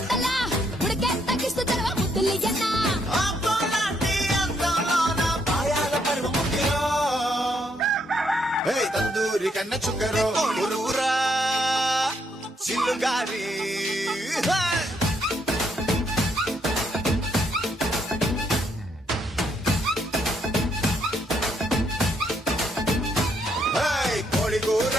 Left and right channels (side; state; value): both; normal; correlation 0.74